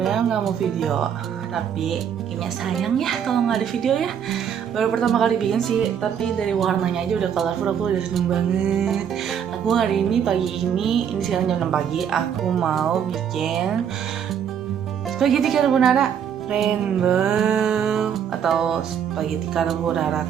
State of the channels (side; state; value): left; quieter; 8.4 dB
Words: nggak mau video, tapi kayaknya sayang ya kalau nggak ada video ya. Baru pertama kali bikin sih, tapi dari warnanya aja udah colorful, aku udah seneng banget. Aku hari ini pagi ini sekarang jam 6 pagi, aku mau bikin spaghetti carbonara rainbow atau spaghetti carbonara